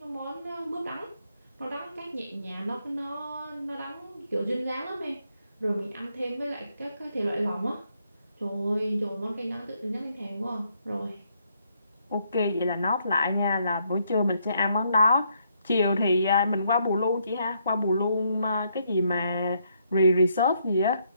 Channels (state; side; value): inverted; both; correlation -0.74